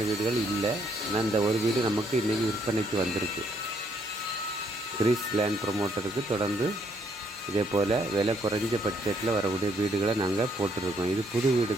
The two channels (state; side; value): normal; both; correlation 0.70